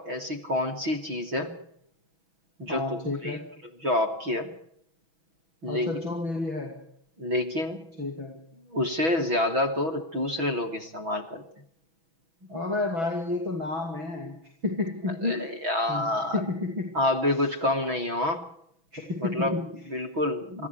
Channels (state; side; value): late; left; 6.1 ms